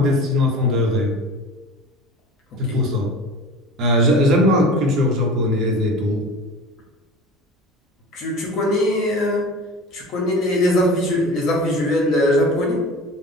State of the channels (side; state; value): both; normal; correlation 0.37